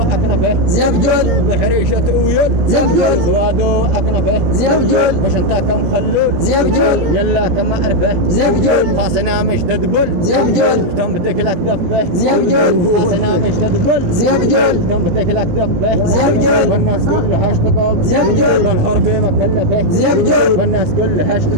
زبجول بحريشة أويل زبجول سوادو أكنفه زبجول مش انت كم خلول زبجول يلا كم أعرفه زبجول خاصنا مش تدبل زبجول كم بتكلك دفه زبجول خاصنا مش تدبل زبجول كم بتكلك دفه زبجول والناس كلها اشتقوا زبجول الحربي مكلفه زبجول والناس كلها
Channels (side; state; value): left; late; 17 ms